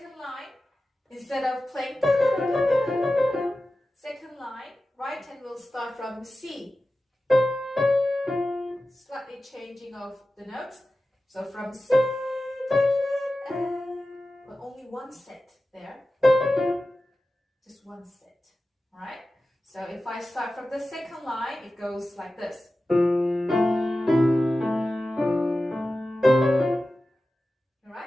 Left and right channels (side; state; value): both; normal; correlation 0.94